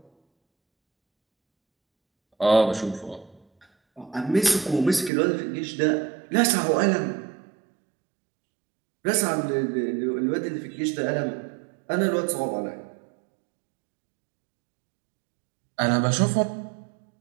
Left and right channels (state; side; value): drops out; left; at 5.1 s